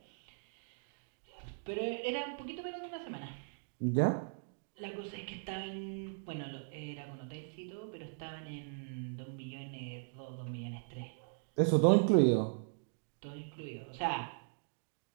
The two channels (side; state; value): left; silent; digital silence